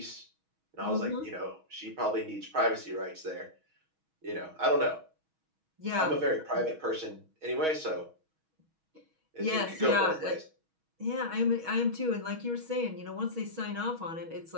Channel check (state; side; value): late; left; 6.3 ms